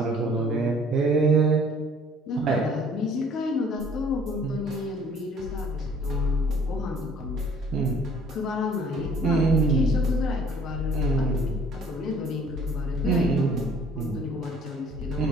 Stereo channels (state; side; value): normal; both; correlation 0.56